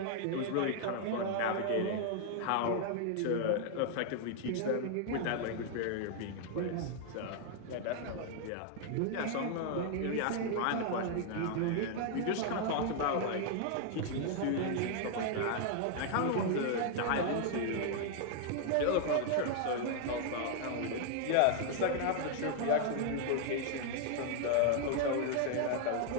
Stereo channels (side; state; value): both; different; correlation 0.00